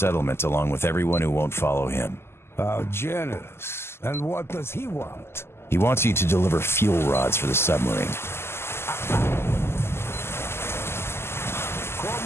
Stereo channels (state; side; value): late; right; 0.12 ms